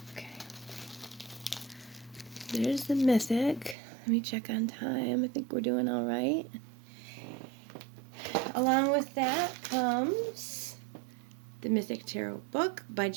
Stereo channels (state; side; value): drops out; left; at 3.8 s